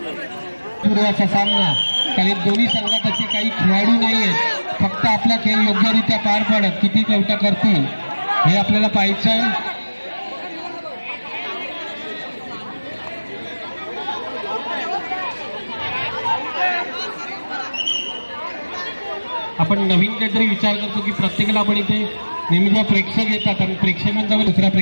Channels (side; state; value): both; inverted; correlation -1.00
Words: पूर्वाचा सामना काही दोन्ही संघात असे काही खेळाडू नाही आहेत. फक्त आपला खेळ योग्यरित्या पार पाडत किती चौका करतील हे आपल्याला पाहायचं आहे. आपण नवीन काहीतरी विचार करतो की प्रत्येकाला आपण इथे नेहमी जेव्हा प्रेक्षक येतात आणि प्रेक्षकांचा दुसऱ्या